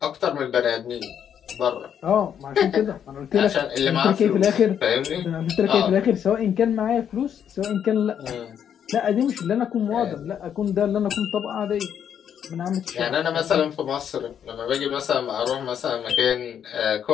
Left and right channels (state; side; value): quieter; right; 8.7 dB